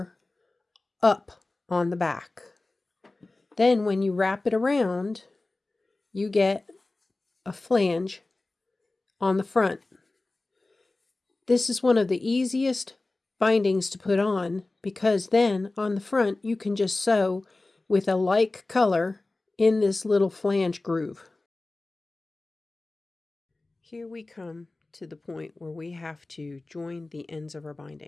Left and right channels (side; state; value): right; quieter; 3.1 dB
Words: up on the back. Then when you wrap it around, you get a flange on the front. This is one of the easiest bindings to put on because then on the front you can just sew with a like color in this little flange groove. Here we come to the point where we have to join the ends of our